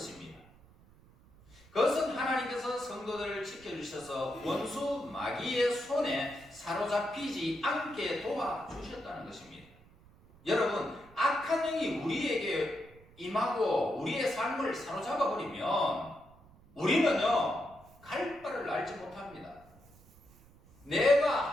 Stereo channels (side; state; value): right; noise; rumble, 25 dB below the sound